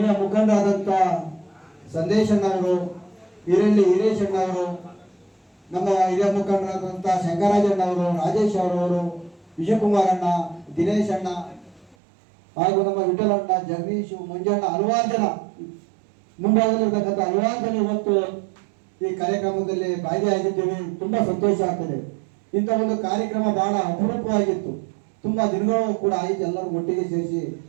ಮುಖಂಡರಾದಂಥ ಸಂದೇಶಣ್ಣವರು, ಹಿರೇಶಣ್ಣವರು, ನಮ್ಮ ಹಿರಿಯ ಮುಖಂಡರಾದಂಥ ಶಂಕರಾಜಣ್ಣವರು, ರಾಜೇಶ್ ಅವರವರು, ವಿಜಯಕುಮಾರಣ್ಣ, ದಿನೇಶ್ ಅಣ್ಣ ಹಾಗೂ ನಮ್ಮ ವಿಠಲಣ್ಣ, ಜಗದೀಶ್, ಮಂಜಣ್ಣ, ಹಲವಾರು ಜನ ಮುಂಭಾಗದಲ್ಲಿರ್ತಕ್ಕಂಥ ಹಲವಾರು ಜನ ಇವತ್ತು ಈ ಕಾರ್ಯಕ್ರಮದಲ್ಲಿ ಭಾಗಿಯಾಗಿದ್ದೇವೆ. ತುಂಬಾ ಸಂತೋಷ ಆಗ್ತದೆ. ಇಂಥ ಒಂದು ಕಾರ್ಯಕ್ರಮ ಬಹಳ ಅಪರೂಪವಾಗಿತ್ತು. ತುಂಬಾ ದಿನಗಳು ಕೂಡ ಆಯಿತು ಎಲ್ಲರೂ ಒಟ್ಟಿಗೆ ಸೇರಿಸಿ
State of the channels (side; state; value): left; drops out; at 12.0 s